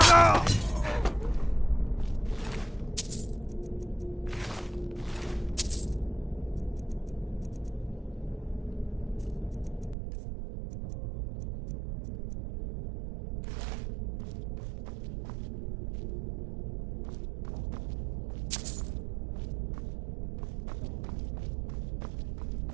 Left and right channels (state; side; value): drops out; left; at 10.0 s